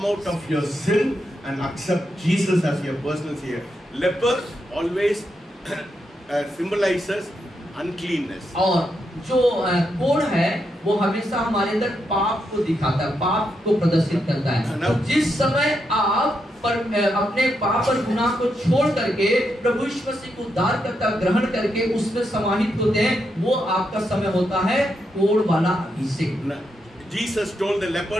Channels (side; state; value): both; normal; correlation 0.82